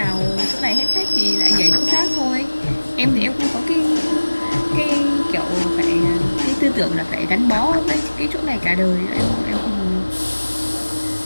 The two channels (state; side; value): inverted; both; correlation -1.00